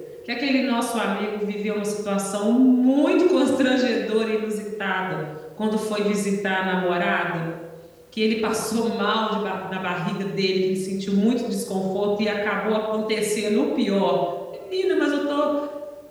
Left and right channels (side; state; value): both; identical; correlation 1.00